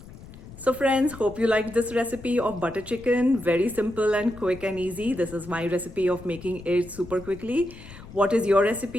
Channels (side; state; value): left; noise; rumble, 17 dB below the sound